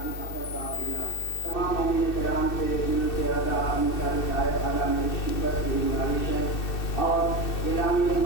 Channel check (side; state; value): right; late; 2.6 ms